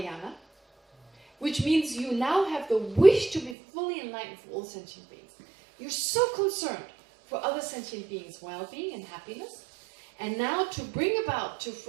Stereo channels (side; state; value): left; drops out; at 3.6 s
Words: which means you now have the wish to be fully enlightened for all sentient beings. You're so concerned for other sentient beings' well-being and happiness, and now to bring about, to